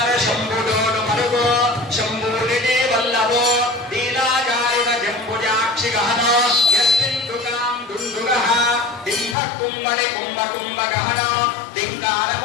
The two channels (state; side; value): drops out; right; at 9.3 s